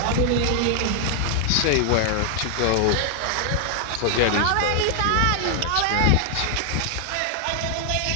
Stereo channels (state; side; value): different; both; correlation 0.00